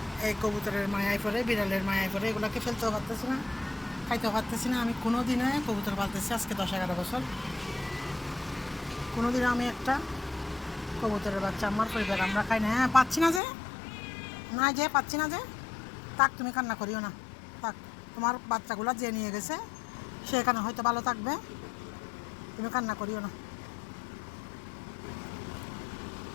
এই কবুতরের মায়ায় পড়ে, বিড়ালের মায়ায় পড়ে, এগুলোকে ফেলতেও পারতেছি না, খাইতেও পারতেছি না। আমি কোনো দিনে কবুতর পালতেছি আজকে 10-11 বছর, কোনো দিনে আমি একটা কবুতরের বাচ্চা আমার পরিবার আমরা খাই না। হ্যাঁ, পাচ্ছি না যে, না যে পাচ্ছি না যে, থাক, তুমি কান্না করিও না, থাক। তোমার বাচ্চাগুলো যে নিয়ে গেছে সে এখানে হয়তো ভালো থাকবে, তুমি কান্না করিও না।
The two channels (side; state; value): right; drops out; at 13.4 s